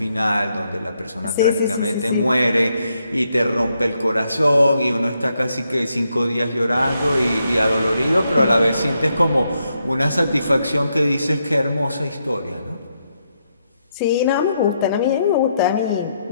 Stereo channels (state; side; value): inverted; both; correlation -0.79